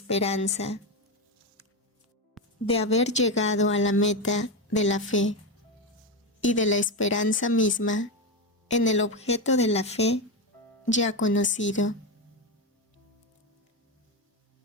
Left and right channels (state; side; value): normal; both; correlation 0.12